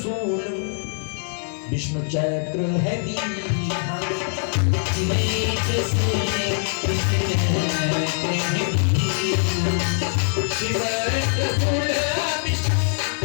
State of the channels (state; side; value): silent; right; digital silence